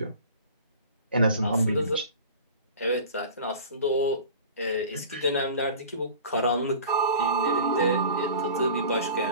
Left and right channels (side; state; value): both; inverted; correlation -0.40